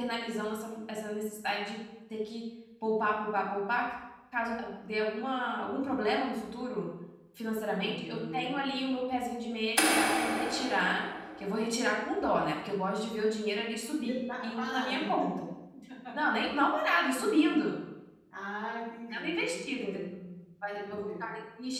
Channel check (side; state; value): both; identical; correlation 1.00